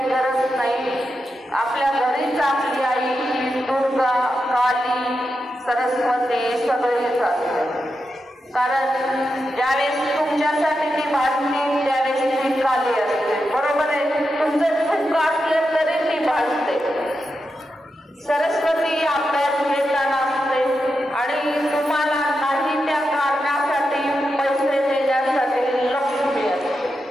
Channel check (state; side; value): normal; both; correlation 0.88